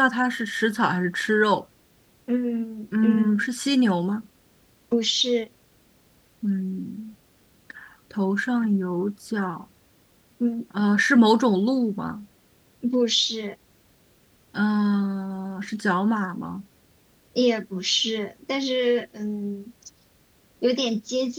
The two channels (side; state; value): both; identical; correlation 1.00